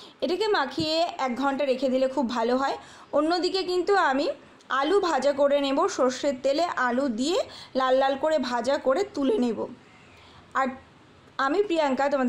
এটাকে মাখিয়ে 1 ঘন্টা রেখে দিলে খুব ভালো হয়। অন্যদিকে কিন্তু আমি আলু ভাজা করে নেব, সর্ষের তেলে আলু দিয়ে লাল লাল করে ভাজা করে তুলে নেব। আর আমি প্রিয়াঙ্কা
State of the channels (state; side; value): identical; both; correlation 1.00